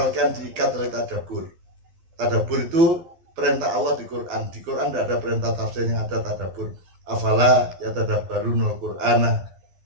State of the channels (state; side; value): late; left; 12 ms